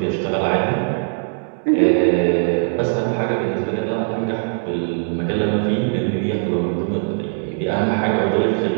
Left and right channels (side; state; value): left; silent; digital silence